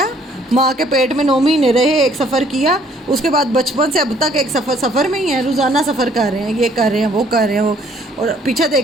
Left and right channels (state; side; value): normal; both; correlation 0.61